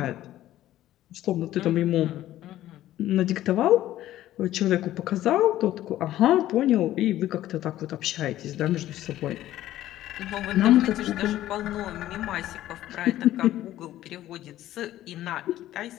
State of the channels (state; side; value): quieter; right; 13.9 dB